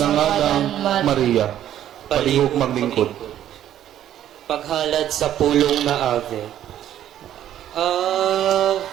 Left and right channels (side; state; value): left; quieter; 11.4 dB